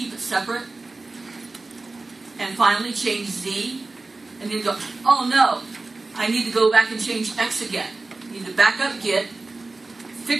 it separate. And finally, change Z. And then go, oh no, I need to go back and change X again. You need to back up Git,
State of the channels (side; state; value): left; quieter; 3.4 dB